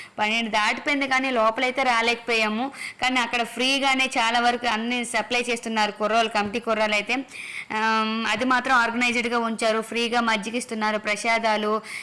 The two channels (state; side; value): identical; both; correlation 1.00